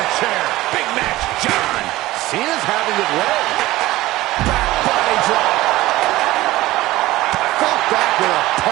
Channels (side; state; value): left; quieter; 17.4 dB